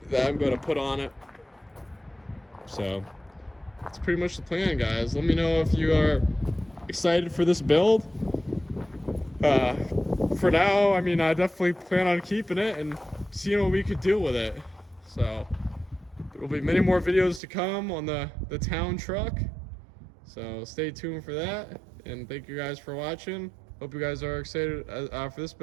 that I'm gonna put on it. So that's pretty much the plan, guys. Let me know if you are excited for this build. For now, I mean, I definitely plan on keeping it and seeing what we could do with it. So there will be many more videos to come on the town truck, so stay tuned for that. And thank you guys for watching. Hope you guys are excited for this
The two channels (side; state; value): left; drops out; at 17.4 s